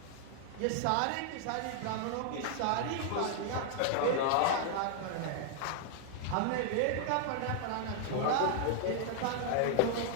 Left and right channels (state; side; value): different; both; correlation -0.01